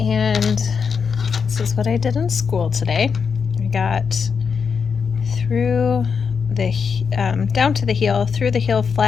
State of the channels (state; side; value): quieter; right; 6.0 dB